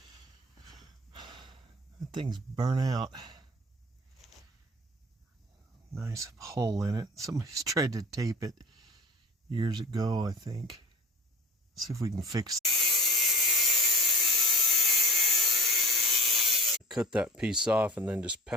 that thing's burnt out. Nice hole in it. Somebody's tried to tape it years ago, I think. See if we can fix it. Cut that piece off and then just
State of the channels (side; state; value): both; normal; correlation 0.40